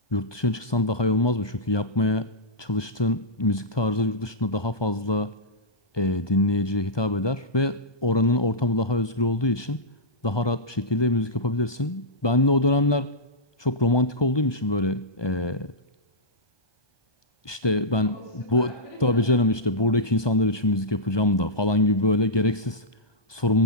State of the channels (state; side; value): late; right; 1.2 ms